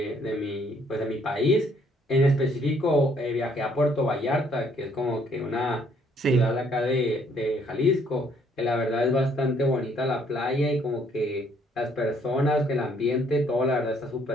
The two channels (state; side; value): normal; both; correlation 0.65